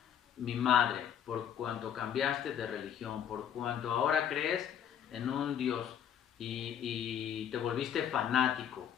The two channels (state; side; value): quieter; right; 9.0 dB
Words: mi madre, por cuanto cambiaste de religión, por cuanto ahora crees en un Dios y te volviste fanático,